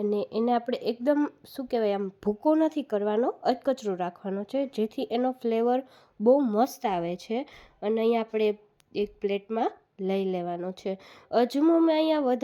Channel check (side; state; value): both; identical; correlation 1.00